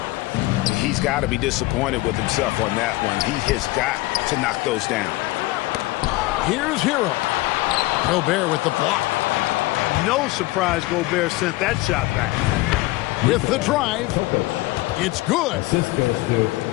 He's got to be disappointed with himself on that one. He has got to knock those down. Here's Hero. Gobert with the block. No surprise Gobert sent that shot back. With the drive, it's good.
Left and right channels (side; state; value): right; quieter; 19.8 dB